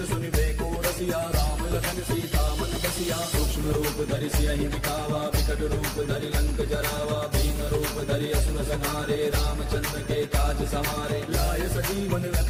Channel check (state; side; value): identical; both; correlation 1.00